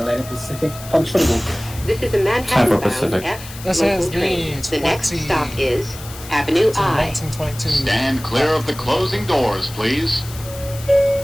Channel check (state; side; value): noise; left; hiss, 15 dB below the sound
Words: Pacific. Punch for the move. This is a Time for Manhattan-bound Pacific. F This local is train. the The next 20 stop is Avenue to I. 1922. Stand clear of the closing doors, please.